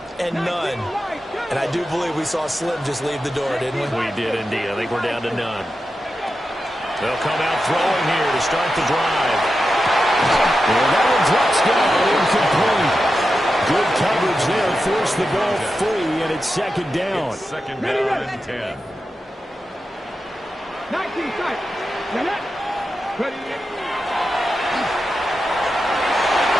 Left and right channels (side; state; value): both; normal; correlation 0.90